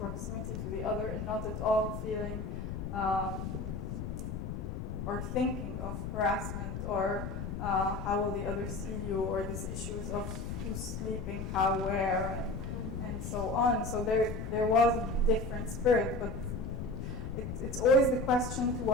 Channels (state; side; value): noise; left; rumble, 5 dB below the sound